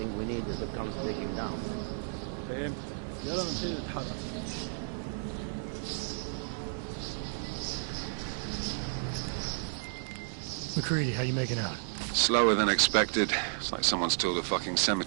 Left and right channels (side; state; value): left; silent; 56 dB below the other